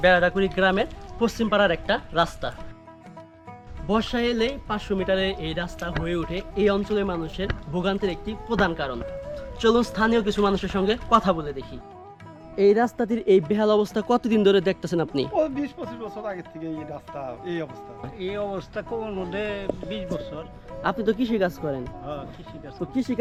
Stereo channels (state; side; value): identical; both; correlation 1.00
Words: বেড়াডাকুড়ি গ্রামের পশ্চিম পাড়ার একটা রাস্তা। বর্ষা এলে 500 মিটারে এই রাস্তা হয়ে ওঠে এই অঞ্চলের মানুষের ভোগান্তির একটি প্রধান কারণ। চলুন স্থানীয় কিছু মানুষের সঙ্গে কথা বলে দেখি। এই রাস্তাটির এই বেহাল অবস্থা কতদিন ধরে দেখতেছেন আপনি? 20-25 বছর আগে থেকে এই রাস্তা এই অবস্থা। এই অবস্থা কোন মধ্যে 20 বছর। আপনি তো কৃষি কাজ করেন, হ্যাঁ, কৃষিকাজ তো কৃষি